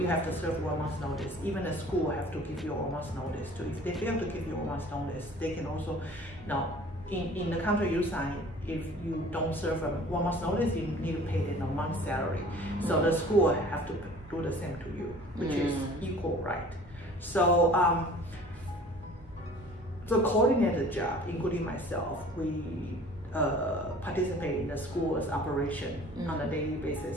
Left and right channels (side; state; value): both; normal; correlation 0.48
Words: have to serve 1 month notice. Even the school have to give you a 1 month notice too. If they fail to give you a 1 month notice, they can also, now in the contract you sign, if you don't serve a 1 month notice, you need to pay them a month's salary. So the school have to do the same to you, which is equal right. So the coordinator job, including myself, we participate in the school's operation on a daily